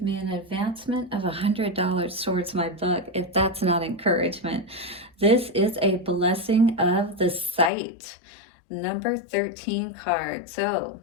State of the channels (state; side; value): drops out; right; at 7.7 s